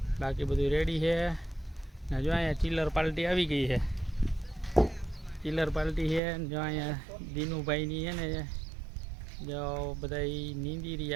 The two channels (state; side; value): drops out; left; at 6.2 s